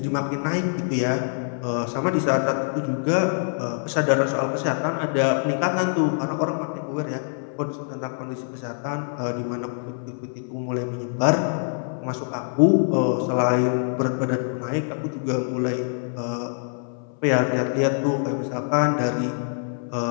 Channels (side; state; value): right; silent; 62 dB below the other